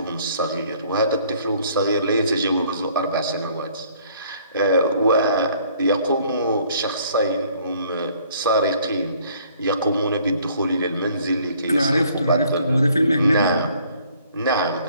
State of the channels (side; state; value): both; inverted; correlation -0.60